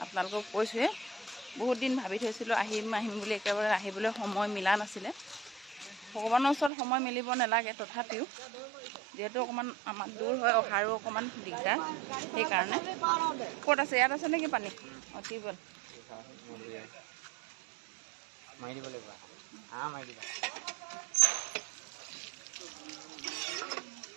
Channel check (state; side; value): drops out; left; at 6.7 s